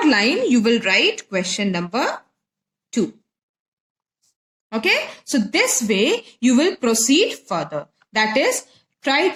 line you will write question number 2. Okay, so this way you will proceed further. That is, try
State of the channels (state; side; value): identical; both; correlation 1.00